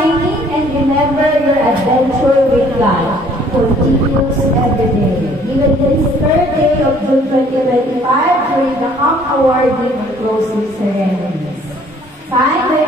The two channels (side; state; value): both; normal; correlation 0.58